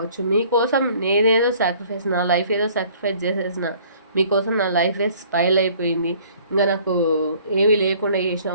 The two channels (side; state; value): both; inverted; correlation -0.55